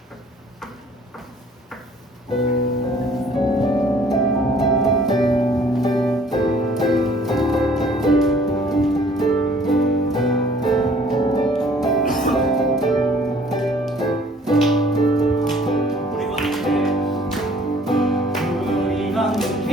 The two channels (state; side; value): normal; both; correlation 0.56